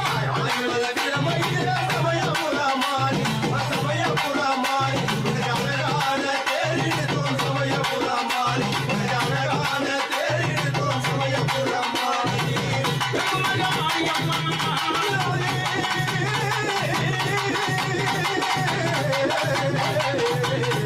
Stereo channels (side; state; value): both; identical; correlation 1.00